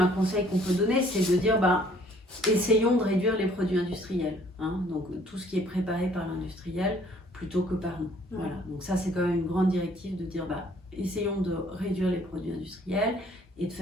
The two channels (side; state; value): both; normal; correlation 0.60